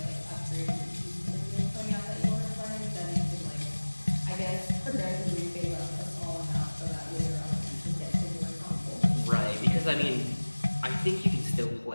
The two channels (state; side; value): inverted; both; correlation -1.00